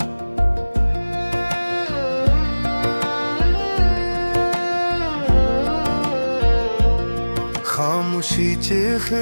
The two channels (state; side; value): inverted; both; correlation -1.00